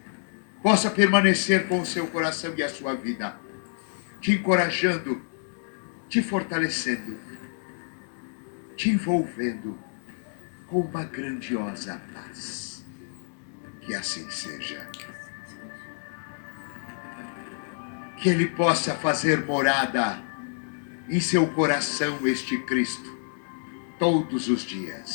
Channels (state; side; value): silent; right; digital silence